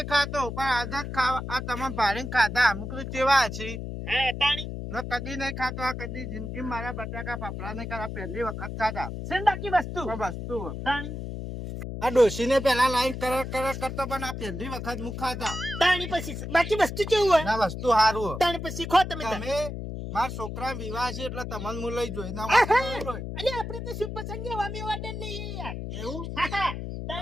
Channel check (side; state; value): left; noise; hum, 6 dB below the sound